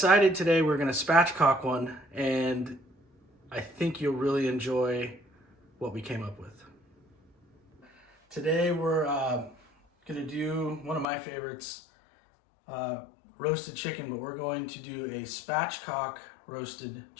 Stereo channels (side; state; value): right; drops out; at 11.1 s